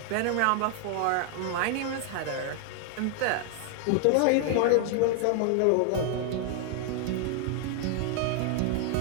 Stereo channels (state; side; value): different; both; correlation 0.00